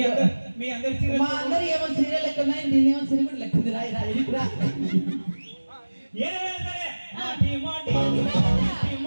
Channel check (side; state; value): both; inverted; correlation -1.00